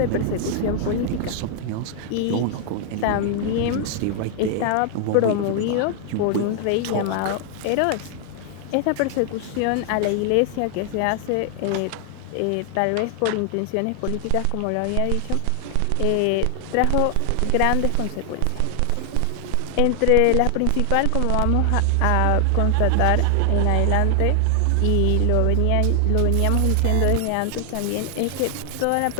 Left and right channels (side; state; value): both; different; correlation 0.00